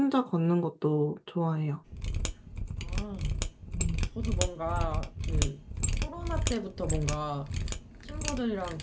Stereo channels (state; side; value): identical; both; correlation 1.00